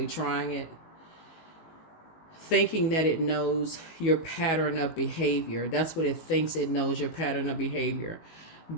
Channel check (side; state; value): right; late; 19 ms